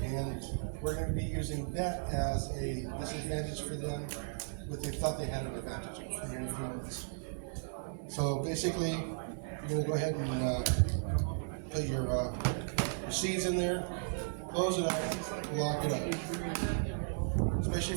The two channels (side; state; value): left; silent; 54 dB below the other